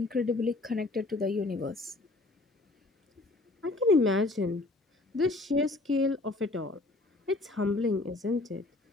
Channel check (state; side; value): quieter; right; 3.0 dB